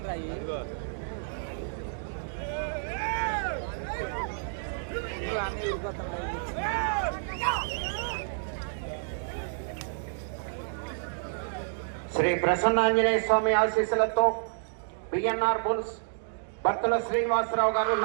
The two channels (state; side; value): silent; left; digital silence